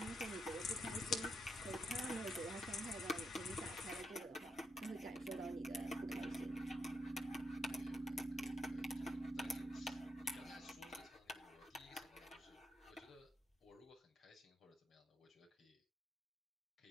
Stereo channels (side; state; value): both; normal; correlation 0.80